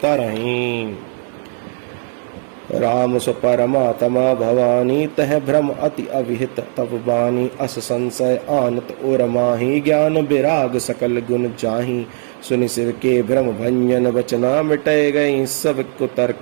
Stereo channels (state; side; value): silent; left; digital silence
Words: तरहि। राम सो परमात्मा भवानी, तह भ्रम अति अविहित तब बानी। अस संशय आनत और माही, ज्ञान विराग सकल गुण जाही। सुनि सिर के भ्रम भंजन बचना, मिटय गई सब को